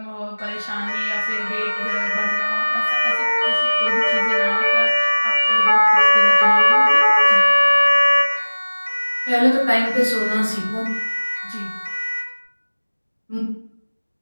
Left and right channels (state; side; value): inverted; both; correlation -1.00